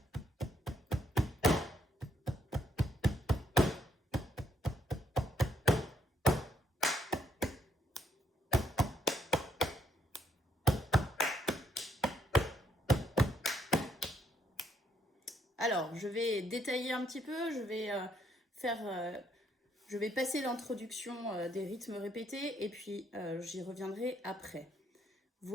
Alors, je vais détailler un petit peu, je vais passer l'introduction des rythmes répétés et puis j'y reviendrai après.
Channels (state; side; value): normal; both; correlation 0.73